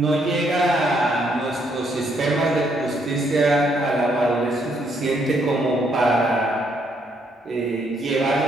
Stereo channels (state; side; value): normal; both; correlation 0.72